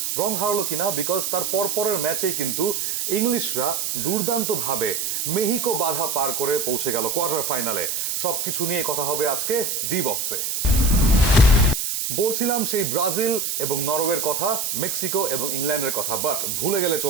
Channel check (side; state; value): right; noise; hiss, 1 dB below the sound